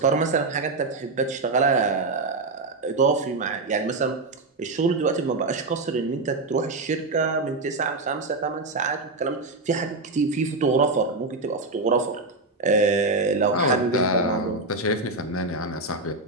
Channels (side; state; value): left; quieter; 3.2 dB